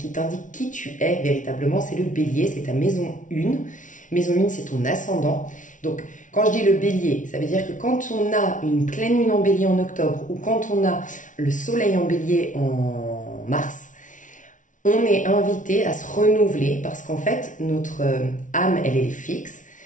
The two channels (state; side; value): late; right; 0.37 ms